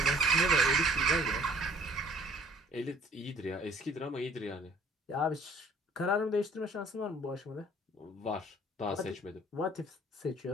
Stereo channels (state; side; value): normal; both; correlation 0.56